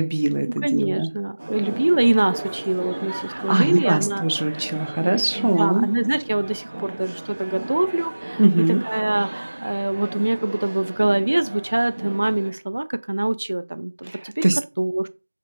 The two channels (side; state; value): both; inverted; correlation -1.00